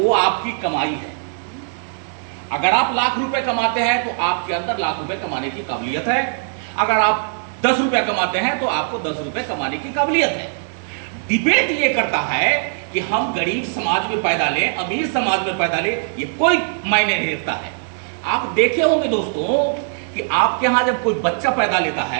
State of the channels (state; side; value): silent; left; digital silence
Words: आपकी कमाई है। अगर आप लाख रुपए कमाते हैं तो आपके अंदर लाख रुपए कमाने की काबिलियत है। अगर आप 10 रुपए कमाते हैं तो आपको 10 रुपए कमाने की काबिलियत है। डिबेट ये करता है कि हम गरीब समाज में पैदा लें, अमीर समाज में पैदा लें, ये कोई मायने नहीं रखता है। आप देखे होंगे दोस्तों कि आपके यहां जब कोई बच्चा पैदा लेता